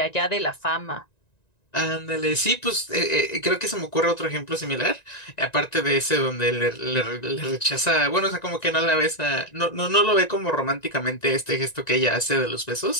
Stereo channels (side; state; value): right; late; 1.9 ms